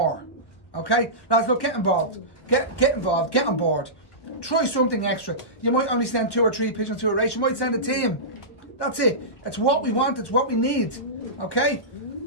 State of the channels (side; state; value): right; late; 1.1 ms